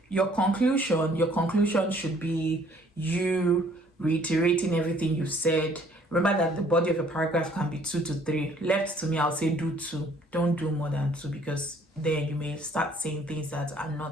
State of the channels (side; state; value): both; normal; correlation 0.60